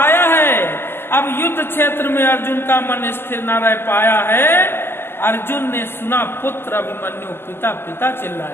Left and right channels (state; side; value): late; right; 0.11 ms